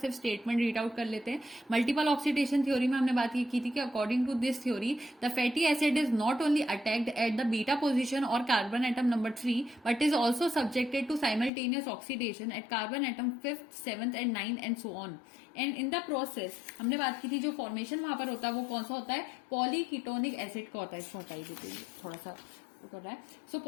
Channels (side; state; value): right; drops out; at 11.5 s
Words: स्टेटमेंट रीड आउट कर लेते हैं। मल्टीपल ऑक्सीडेशन थ्योरी में हमने बात ये की थी कि according to this theory the fatty acid is not only attacked at the beta position और carbon atom number 3 but is also subjected to simultaneous oxidation at carbon atom 5th, 7th and 9th and so on. And in the process हमने बात की थी जो formation वहां पर होता है वो कौन सा होता है, पॉलीकीटोनिक एसिड का होता है। इसको हटाई देते हैं, थोड़ा सा कर रहा है। सो